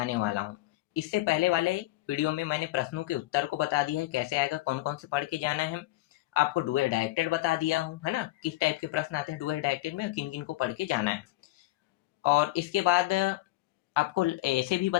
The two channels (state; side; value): quieter; right; 17.9 dB